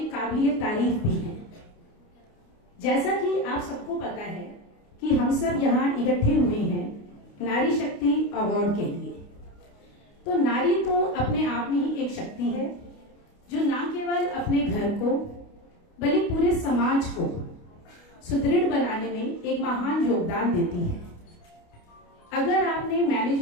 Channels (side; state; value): right; late; 29 ms